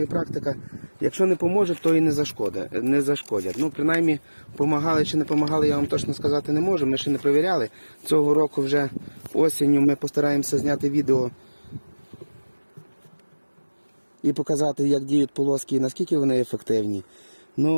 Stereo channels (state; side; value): inverted; both; correlation -1.00